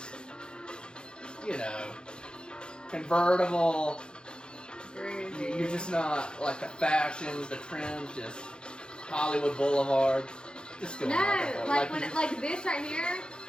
you know, convertible. You're just not like the fashions, the trends, just Hollywood Boulevard. Just going like this right here.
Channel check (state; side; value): late; right; 0.050 ms